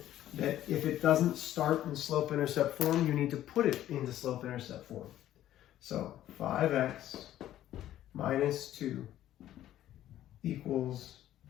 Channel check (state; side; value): quieter; right; 12.7 dB